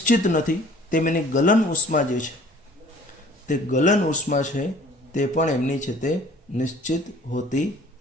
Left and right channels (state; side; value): normal; both; correlation 0.52